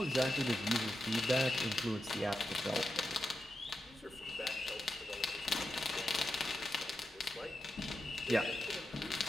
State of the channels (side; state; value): both; normal; correlation 0.88